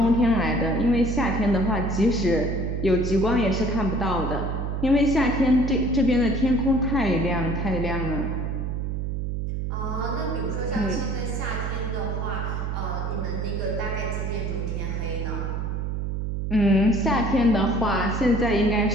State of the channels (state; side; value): noise; right; hum, 2 dB below the sound